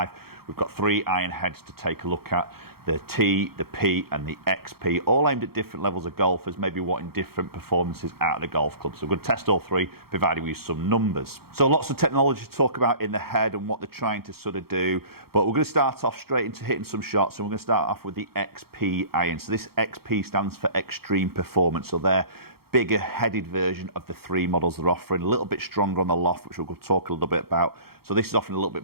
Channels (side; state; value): left; late; 0.95 ms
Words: We've got 3 iron heads to take a look at. The T, the P and the XP, all aimed at different levels of golfers, maybe wanting different performances out of the golf club. So we're going to test all 3, providing we use some numbers. So lots of technology to talk about in the head and what they're trying to sort of do. But we're going to start off straight into hitting some shots, and we're going to start off with the XP iron. So this XP stands for Extreme Performance. So they're bigger headed version of the 3 models they're offering, a little bit stronger on the loft, which we'll talk a little bit about. So this is offering a little bit